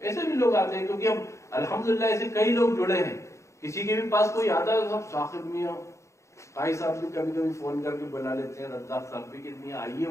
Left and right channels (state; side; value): late; right; 0.14 ms